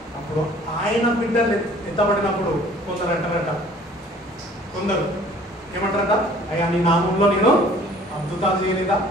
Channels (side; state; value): both; normal; correlation 0.53